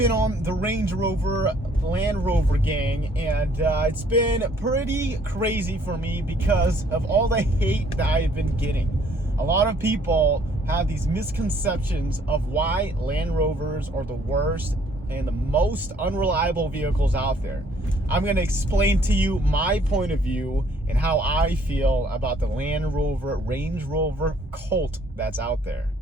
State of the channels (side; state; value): both; normal; correlation 0.62